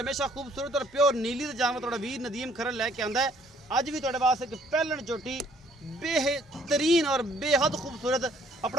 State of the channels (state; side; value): normal; both; correlation 0.62